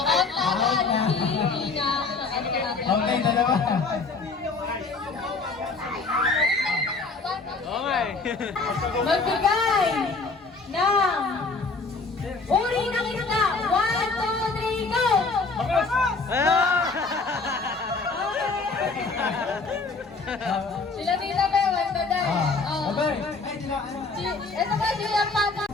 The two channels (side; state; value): right; quieter; 4.0 dB